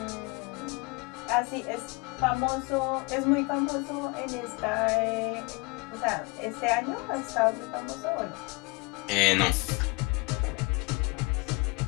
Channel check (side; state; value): right; quieter; 27.3 dB